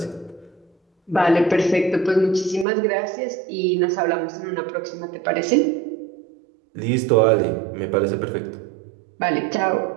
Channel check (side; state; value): left; drops out; at 2.7 s